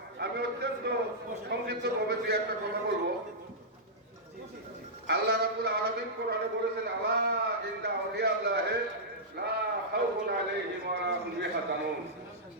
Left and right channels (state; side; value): normal; both; correlation -0.12